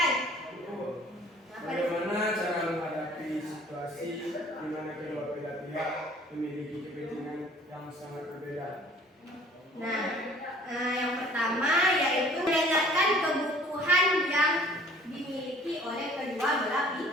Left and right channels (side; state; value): both; normal; correlation 0.53